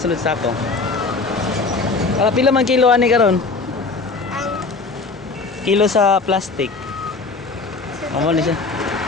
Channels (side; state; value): right; quieter; 4.0 dB